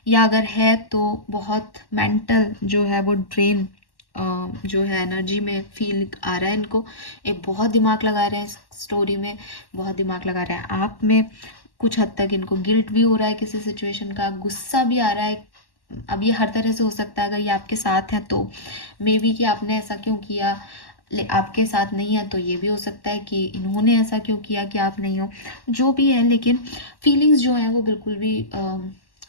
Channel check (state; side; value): late; right; 1.1 ms